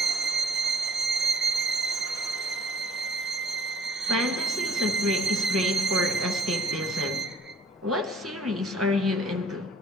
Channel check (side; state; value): both; normal; correlation 0.56